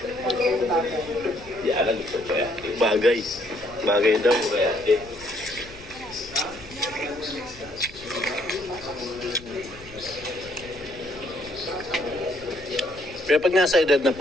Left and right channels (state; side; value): noise; left; rumble, 20 dB below the sound